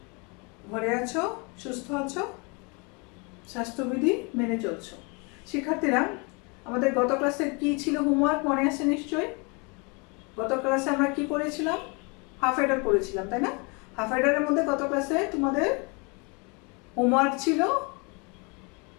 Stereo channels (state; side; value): quieter; right; 31.3 dB